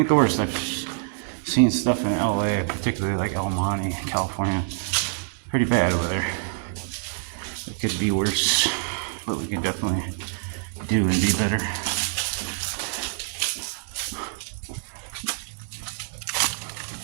the worst. I've seen stuff in LA, particularly like El Monte, California. Pretty bad over there. It could be worse, but we can definitely do and be better.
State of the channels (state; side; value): silent; left; 61 dB below the other